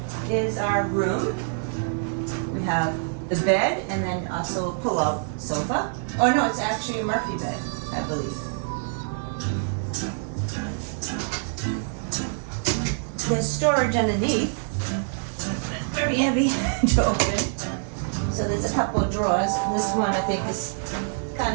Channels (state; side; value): silent; left; digital silence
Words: is our room. We have the bed and then also a pull-out sofa. Oh no, it's actually a Murphy bed, I believe. There's storage underneath. Very heavy to open. So there's a couple of drawers. This one I think is